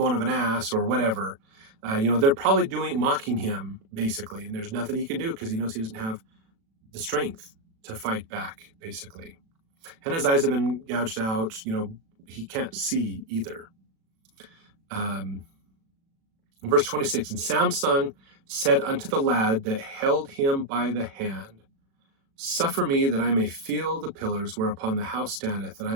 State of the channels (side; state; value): left; late; 36 ms